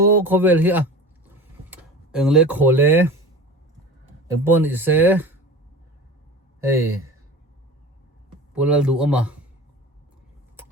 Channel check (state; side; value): normal; both; correlation 0.35